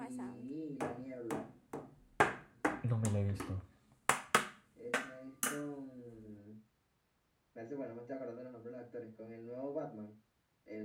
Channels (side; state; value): both; identical; correlation 1.00